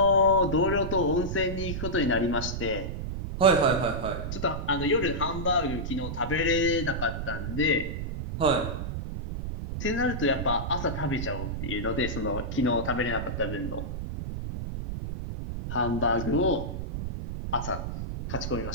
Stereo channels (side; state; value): right; noise; rumble, 5 dB below the sound